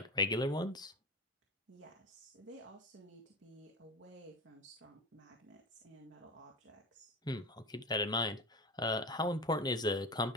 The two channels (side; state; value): both; normal; correlation 0.26